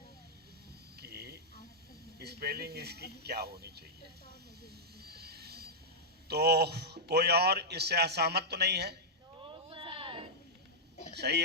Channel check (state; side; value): normal; both; correlation -0.07